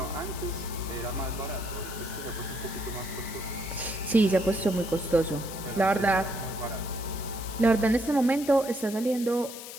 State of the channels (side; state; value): left; noise; hiss, 11 dB below the sound